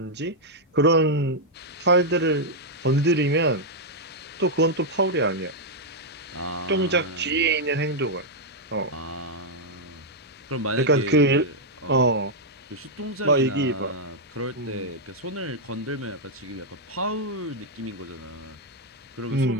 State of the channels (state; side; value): normal; both; correlation -0.04